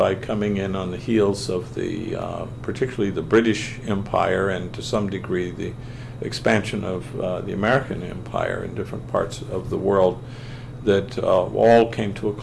coming in on the heels of particularly the British Empire, and to some degree the expansion of the American Empire in different parts of the world, that all came to a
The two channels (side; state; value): both; identical; correlation 1.00